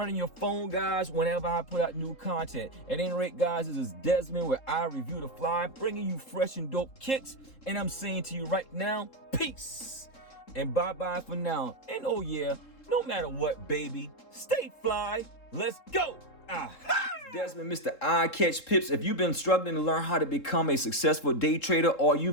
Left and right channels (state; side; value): late; right; 3.7 ms